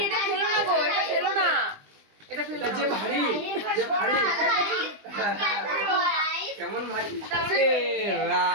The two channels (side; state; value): left; late; 20 ms